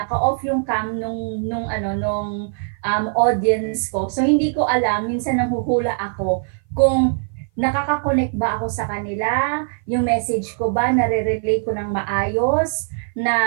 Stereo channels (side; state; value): left; silent; 57 dB below the other